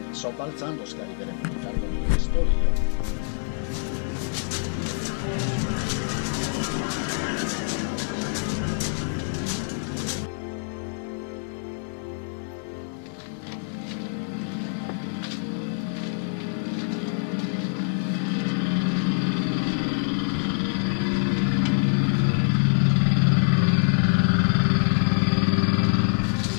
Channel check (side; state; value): right; silent; digital silence